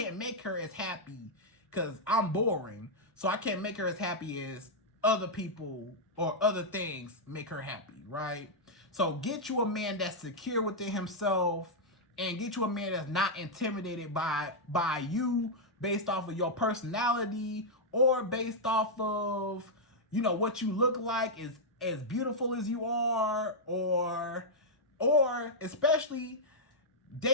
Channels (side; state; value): both; normal; correlation -0.05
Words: make her as happy because I'm boring. So I can't make her as happy as other people or other things make her happy, right? So get you a man that's secure within himself, and get you a man that's not intimidated by you based off of your personality or based off of, you know, what you look like, is as beautiful as you are, or especially